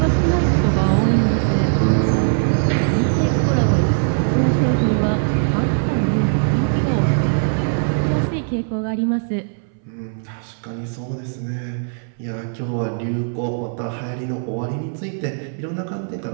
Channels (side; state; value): left; silent; 65 dB below the other